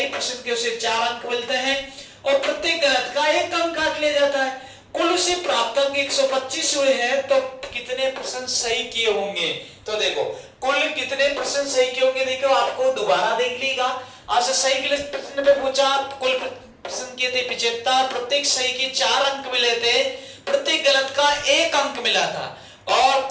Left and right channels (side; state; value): both; identical; correlation 1.00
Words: प्रश्न के उसे 4 अंक मिलते हैं और प्रत्येक गलत का 1 अंक काट लिया जाता है। कुल उसे प्राप्त अंक 125 हुए हैं, तो कितने प्रश्न सही किए होंगे? तो देखो कुल कितने प्रश्न सही किए होंगे, देखो आपको दोबारा देख लीजिएगा। आपसे सही के लिए प्रश्न पे पूछा, कुल प्रश्न किए थे 75, प्रत्येक सही के 4 अंक मिले थे, प्रत्येक गलत का 1 अंक मिला था और